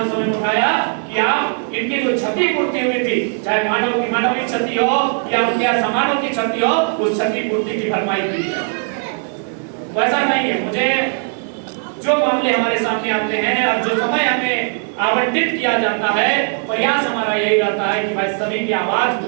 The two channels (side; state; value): left; silent; 55 dB below the other